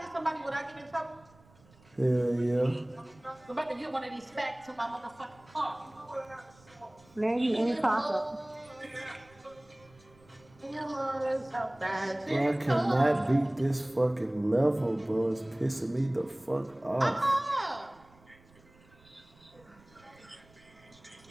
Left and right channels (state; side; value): noise; right; rumble, 28 dB below the sound